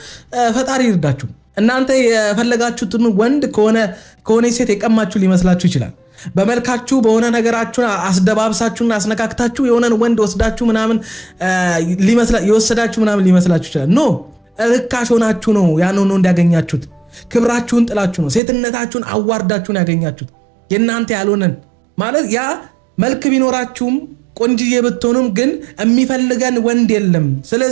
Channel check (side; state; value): left; drops out; at 18.4 s